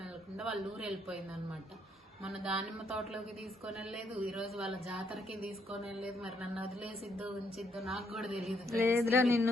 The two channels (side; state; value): both; normal; correlation 0.73